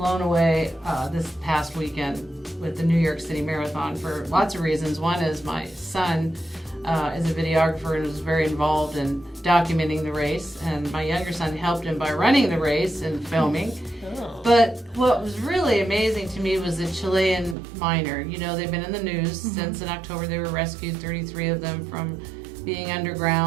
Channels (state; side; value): drops out; left; at 17.6 s